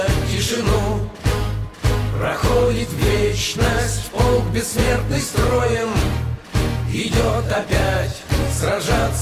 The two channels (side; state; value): both; identical; correlation 1.00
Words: тишину. Проходит вечность полк бессмертный строем, идет опять